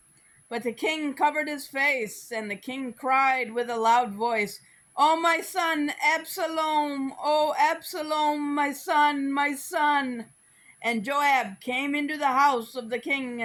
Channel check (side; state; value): both; identical; correlation 1.00